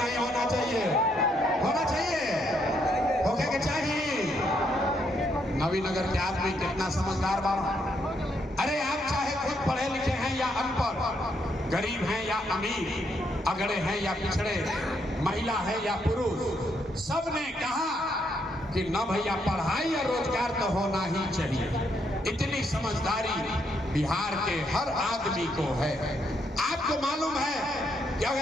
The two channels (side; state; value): both; normal; correlation 0.75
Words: होना चाहिए? होना चाहिए, होके के चाहिए। नवीनगर के आदमी कितना समझदार बाबा। अरे आप चाहे खुद पढ़े लिखे हैं या अनपढ़, गरीब हैं या अमीर, अगड़े हैं या पिछड़े, महिला है या पुरुष, सबने कहा कि न भैया पढ़ाई या रोजगार तो होना ही चाहिए। इतनी समझदारी बिहार के हर आदमी को है। आपको मालूम है कि